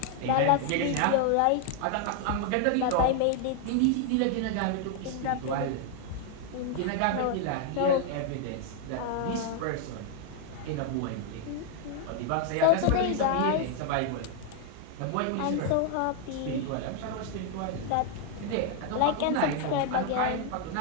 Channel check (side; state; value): both; different; correlation 0.00